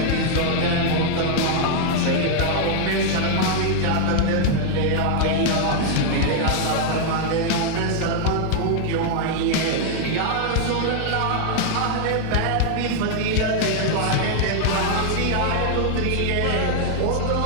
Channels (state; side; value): different; both; correlation 0.00